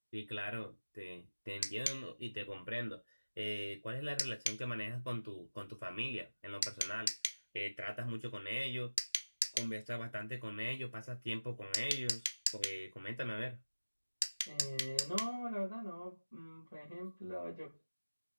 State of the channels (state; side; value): inverted; both; correlation -1.00